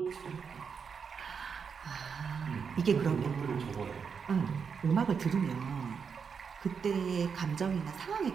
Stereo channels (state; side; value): quieter; left; 6.2 dB